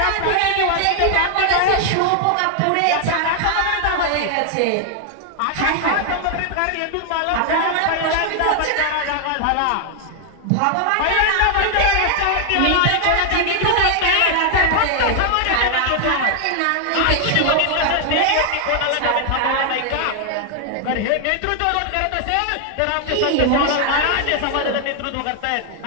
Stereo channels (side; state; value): both; different; correlation 0.00